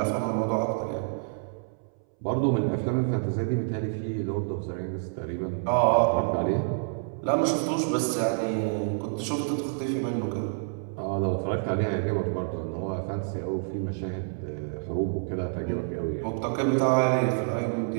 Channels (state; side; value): silent; left; 59 dB below the other